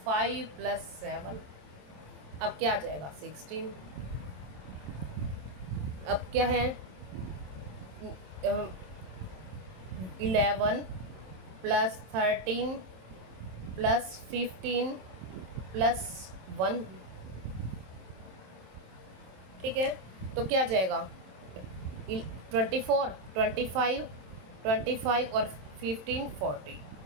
5 + 7 अब क्या आ जाएगा 16। अब क्या है 11 + 13 + 15 + 1, ठीक है। तो क्या आ जाएगा 24 25 और 15 40।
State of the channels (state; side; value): late; left; 27 ms